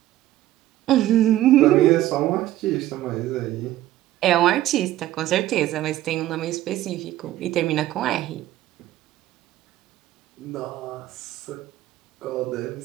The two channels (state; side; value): quieter; left; 14.4 dB